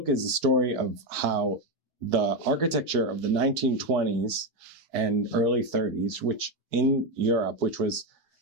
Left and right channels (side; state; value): left; late; 4.6 ms